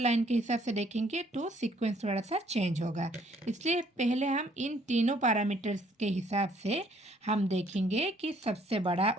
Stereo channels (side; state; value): both; normal; correlation 0.64